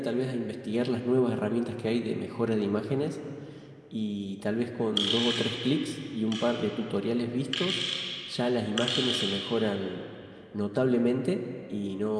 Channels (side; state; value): both; identical; correlation 1.00